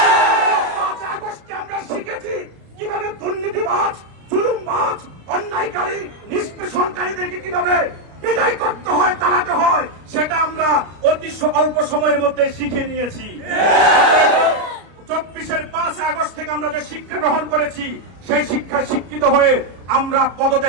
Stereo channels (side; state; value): left; late; 33 ms